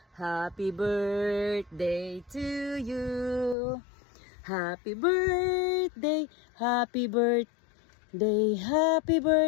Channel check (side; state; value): right; drops out; at 3.6 s